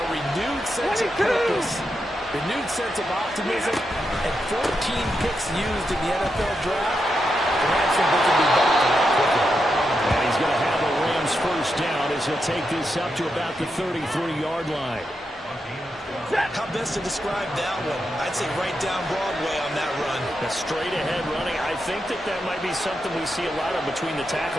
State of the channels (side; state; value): both; normal; correlation 0.85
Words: renewed sense of purpose, renewed sense of optimism, and 14 picks used in the NFL draft. The Rams think they can be back to that quickly. And he's going to have a Rams first down as he'll take this up to about the 33-yard line. How best to describe that one? I'd say right down Broadway on that run. A straight-ahead running. I think that might be something we see a lot of between the